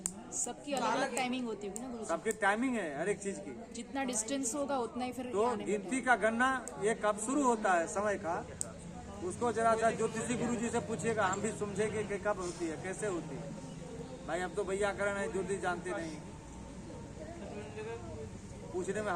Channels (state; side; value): identical; both; correlation 1.00